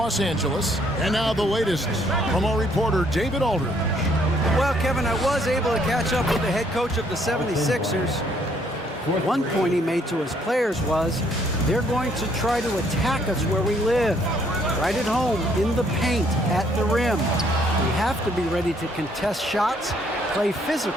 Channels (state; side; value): normal; both; correlation 0.67